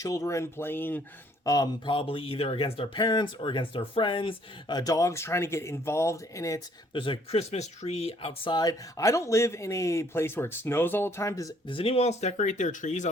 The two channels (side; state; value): both; normal; correlation 0.63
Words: playing probably either against their parents or against their friends. Dogs trying to get involved in it. There's a Christmas tree outside. I don't live in a place where it snows all the time. Does anyone else decorate their trees